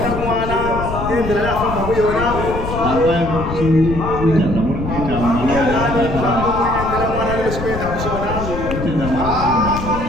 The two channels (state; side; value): noise; left; rumble, 6 dB below the sound